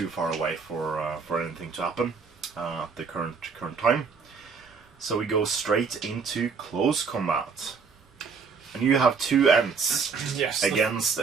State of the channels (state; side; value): quieter; left; 5.4 dB